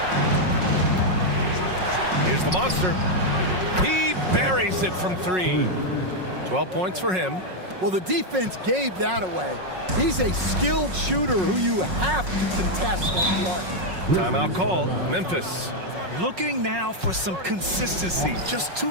Here's the monster. He buries it from 3. 12 points for him. Well, the defense gave that away. He's a skilled shooter who you have to contest on the arc. Timeout called. Memphis. Looking now for some consistency. Just too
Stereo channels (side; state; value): left; late; 5.4 ms